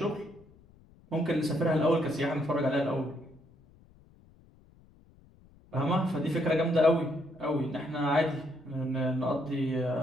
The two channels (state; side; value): noise; left; rumble, 27 dB below the sound